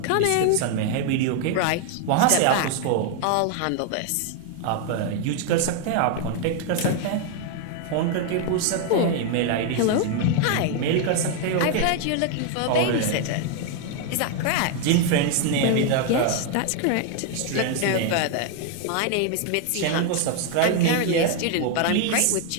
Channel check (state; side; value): different; both; correlation 0.00